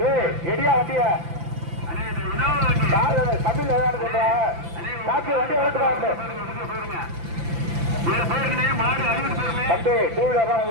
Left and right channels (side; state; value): left; late; 5.9 ms